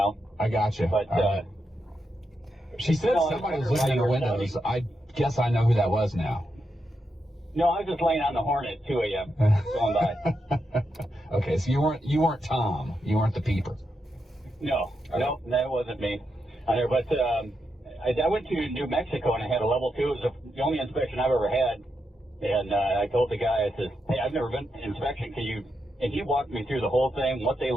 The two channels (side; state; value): both; normal; correlation 0.85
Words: I got you. But she said no, somebody was I looking in the wondered why windows. you were I guess I know who that was now. no, I was just laying on the Hornet at 2 a.m. going by. Okay, so you weren't Tom. You weren't the peeper. No, that wasn't me on there. But I went to New Mexico and I had a level 2. It was the only inspection I've ever had. And I told the guy, I said, hey, I've never been to inspection. Can you? And he walked me through the whole thing, what they